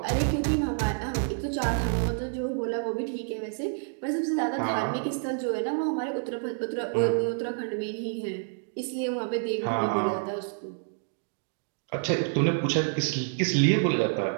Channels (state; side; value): silent; left; 59 dB below the other